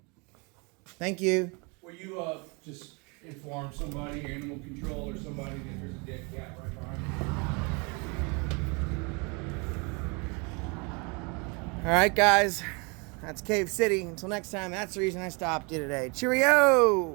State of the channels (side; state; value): left; quieter; 31.0 dB